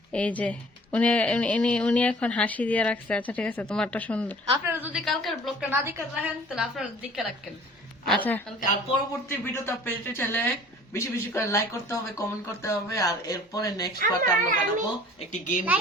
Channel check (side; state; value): both; normal; correlation 0.49